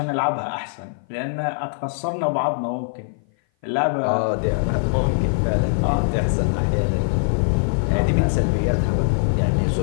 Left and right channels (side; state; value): right; silent; 57 dB below the other